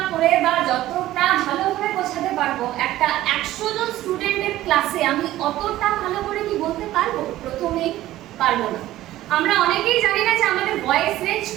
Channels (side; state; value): left; quieter; 14.9 dB